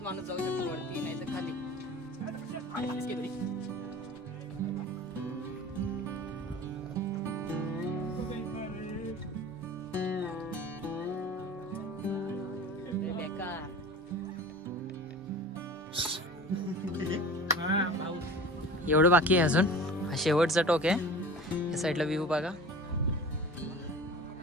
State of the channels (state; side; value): normal; both; correlation 0.38